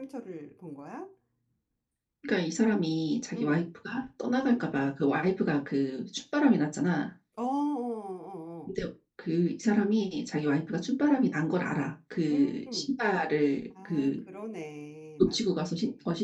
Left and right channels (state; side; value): identical; both; correlation 1.00